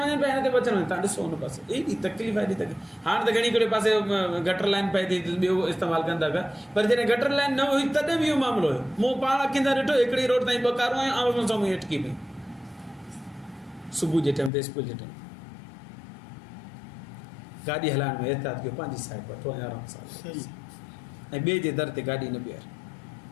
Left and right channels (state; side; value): drops out; right; at 14.5 s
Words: वञनि पिया, हिन ते बि अचनि वञनि, तव्हां ॾिसो हुन पासे एॾी तकलीफ़ आहे, एॾी तकलीफ़। हाणे त घणी हिकिड़े पासे गटर लाइन पए थी, ॿियो इस्तेमालु कनि था पिया, पर जॾहिं गटर लाइन न हुई तॾहिं बि इहो मामिलो हुयो। मूं पाण अखियुनि सां ॾिठो, हिकिड़ी रोड ताईं 2 कारूं आहियूं, आम्हूं साम्हूं अटकी पई, सुबुह जे टाइम ते, स्कूल जे टाइम। गाॾी हलाइण में एहतियात कयो, पंहिंजी साइड वठो ऐं आराम सां, ऐं ॿिए जे दर ते गाॾी न बीहार।